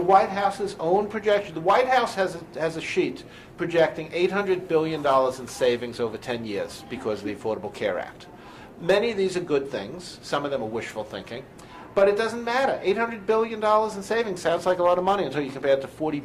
House's own projection, the White House has a sheet projecting $800 billion in savings over 10 years because of the Affordable Care Act. Many of these are good things. Some of them are wishful thinking. But it doesn't matter. $800 billion in savings sounds like a lot of money until you compare it to $40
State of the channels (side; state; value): both; identical; correlation 1.00